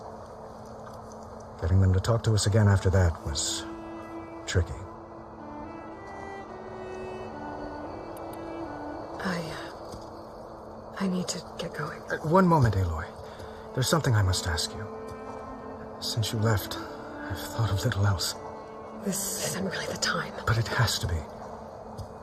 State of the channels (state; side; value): identical; both; correlation 1.00